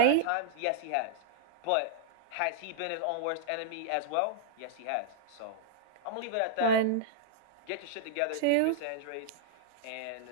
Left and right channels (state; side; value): different; both; correlation -0.02